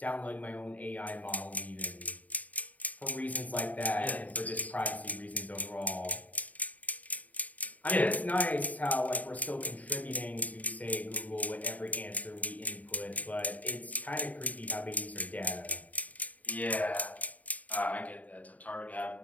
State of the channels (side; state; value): right; late; 0.073 ms